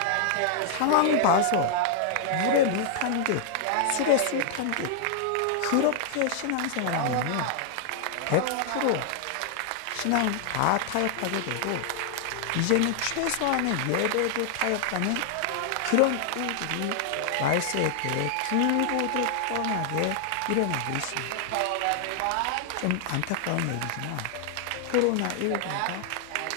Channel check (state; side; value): different; both; correlation -0.01